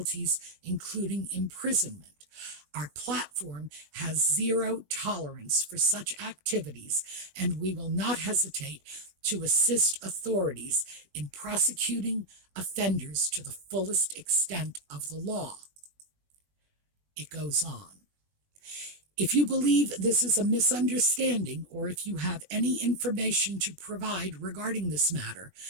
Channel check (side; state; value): left; late; 20 ms